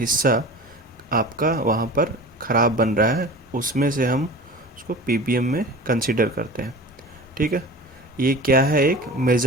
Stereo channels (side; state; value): both; normal; correlation 0.37